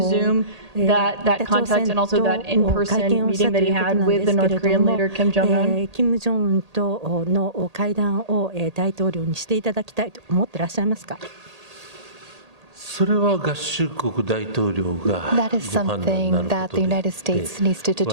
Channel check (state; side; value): late; left; 1.8 ms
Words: that contact and also that in-person meeting that he had with the North Korean leader Kim Jong-un? 金正恩との会談を大統領にしていただきたいと思ってらっしゃいますか？それは合衆国大統領が That is something that the United States needs to